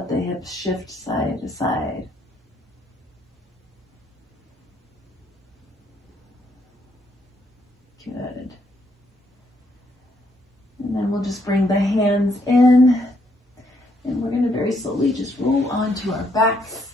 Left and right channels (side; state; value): both; normal; correlation 0.73